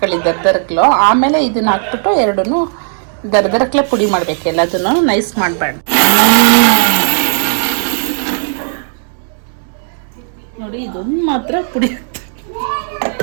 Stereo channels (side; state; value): left; silent; 71 dB below the other